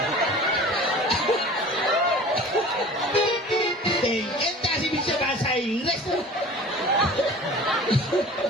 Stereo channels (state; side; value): normal; both; correlation 0.41